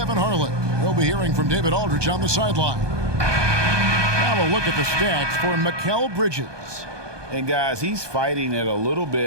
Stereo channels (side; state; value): left; late; 1.2 ms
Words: Harlan. We'll be hearing from David Aldridge on the sideline. Now a look at the stats for Mikal Bridges. And guys, he's fighting it a little